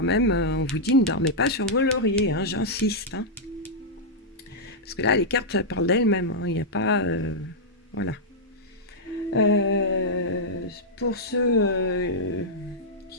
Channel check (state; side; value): normal; both; correlation -0.08